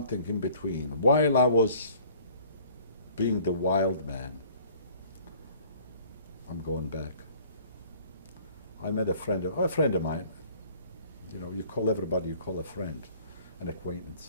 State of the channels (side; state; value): both; inverted; correlation -0.54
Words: in between. While I was being the wild man, I'm going back. I met a friend of mine. You know, you call everybody, you call a friend, an